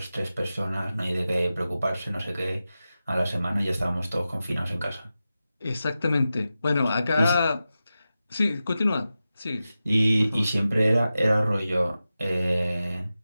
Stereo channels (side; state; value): both; inverted; correlation -0.93